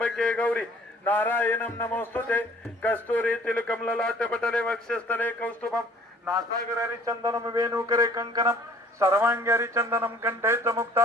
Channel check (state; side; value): normal; both; correlation 0.54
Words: गौरी नारायणं नमोस्तुते. कस्तुरी तिलकमललाट पटले वक्षस्थले कौस्तुभं नासागरारि चंदनं वेणुकरे कंकणं सर्वांगी चंदनं कंठे च